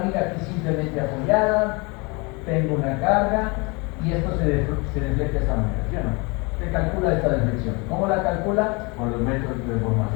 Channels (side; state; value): right; quieter; 28.5 dB